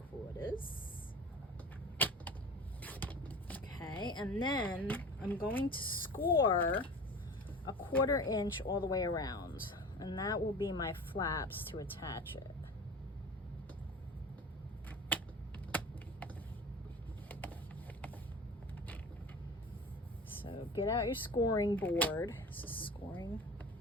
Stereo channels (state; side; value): normal; both; correlation 0.36